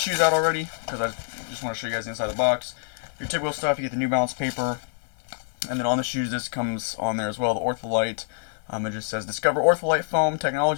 out already because I just want to show you guys the inside of the box. Your typical stuff, you get the New Balance paper, and then on the shoes this comes on there as well, the Ortholite. It just says, discover Ortholite foam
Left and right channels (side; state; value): right; silent; digital silence